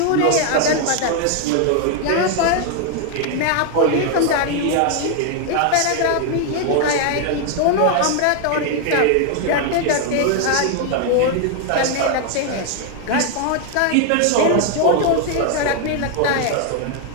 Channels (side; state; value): both; different; correlation 0.00